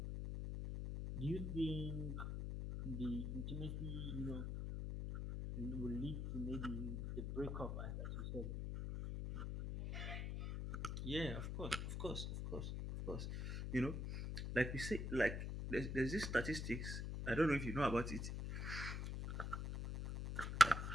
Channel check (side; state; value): left; noise; hum, 3 dB below the sound